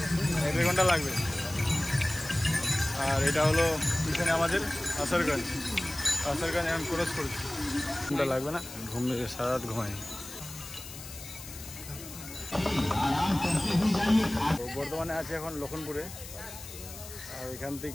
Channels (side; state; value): left; noise; hiss, 13 dB below the sound